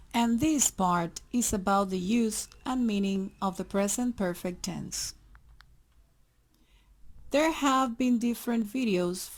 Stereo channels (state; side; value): identical; both; correlation 1.00